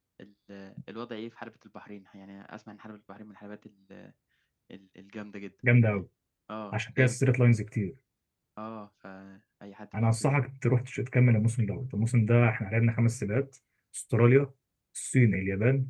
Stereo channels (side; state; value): both; identical; correlation 1.00